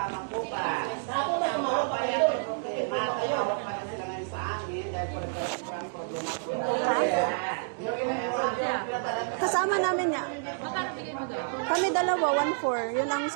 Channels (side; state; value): left; silent; digital silence